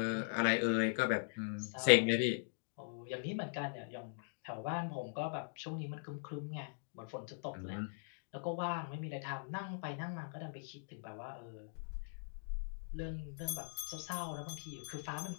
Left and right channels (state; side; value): silent; right; digital silence